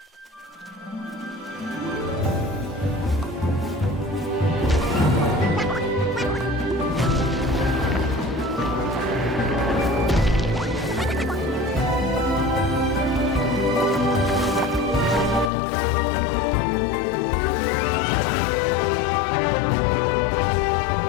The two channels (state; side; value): drops out; right; at 15.5 s